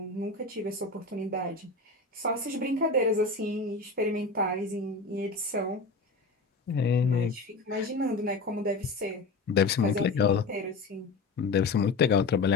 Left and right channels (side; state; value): right; quieter; 3.7 dB